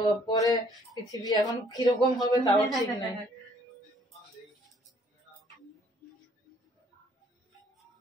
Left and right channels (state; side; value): normal; both; correlation 0.61